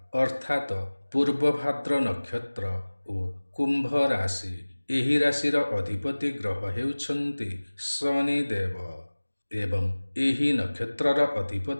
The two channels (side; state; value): both; inverted; correlation -1.00